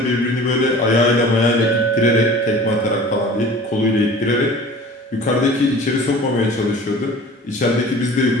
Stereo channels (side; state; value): both; normal; correlation 0.43